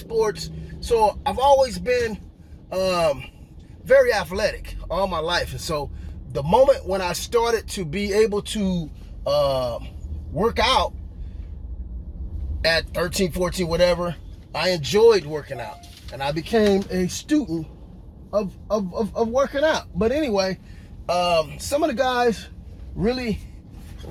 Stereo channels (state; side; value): identical; both; correlation 1.00